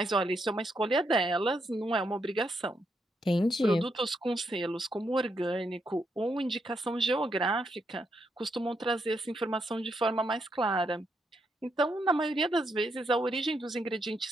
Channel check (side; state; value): both; normal; correlation 0.79